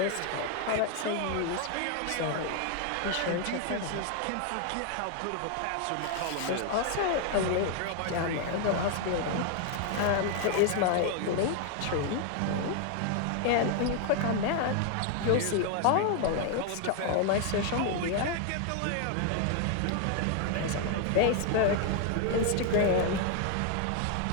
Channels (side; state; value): both; different; correlation 0.00